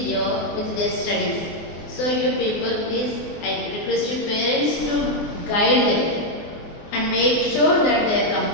with their studies. So you people, please, I request your parents to guide them and make sure that they are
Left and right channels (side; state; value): right; late; 24 ms